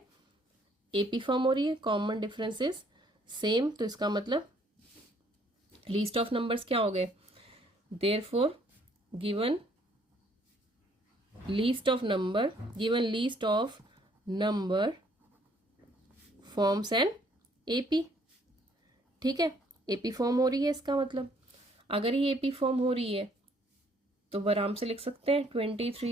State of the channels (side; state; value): both; normal; correlation 0.64